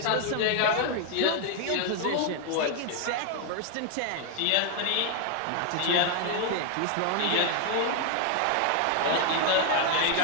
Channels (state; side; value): different; both; correlation 0.00